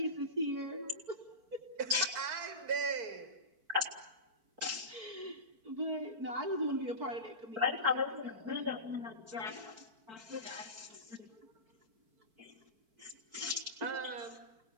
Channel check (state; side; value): late; left; 4.5 ms